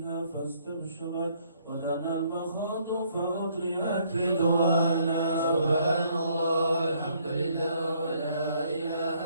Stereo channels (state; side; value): inverted; both; correlation -0.66